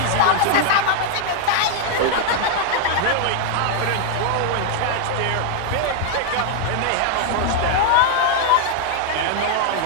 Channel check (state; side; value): different; both; correlation 0.00